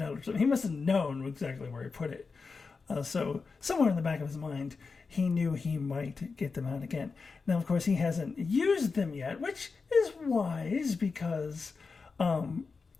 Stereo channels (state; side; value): quieter; right; 4.6 dB